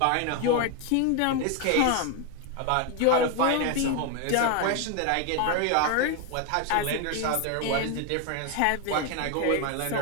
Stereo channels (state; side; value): different; both; correlation 0.01